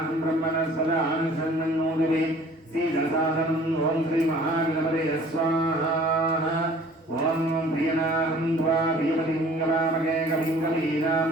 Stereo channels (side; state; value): both; normal; correlation 0.51